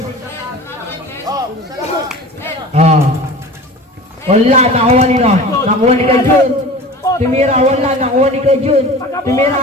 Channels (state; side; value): normal; both; correlation 0.37